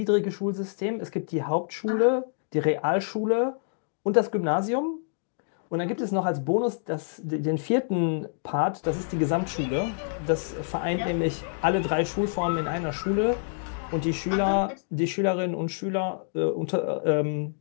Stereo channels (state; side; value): silent; right; digital silence